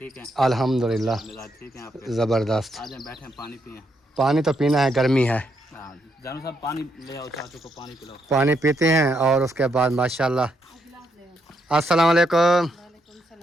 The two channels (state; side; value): normal; both; correlation 0.78